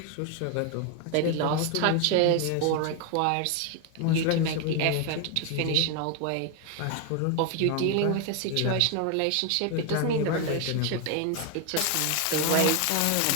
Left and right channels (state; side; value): different; both; correlation 0.01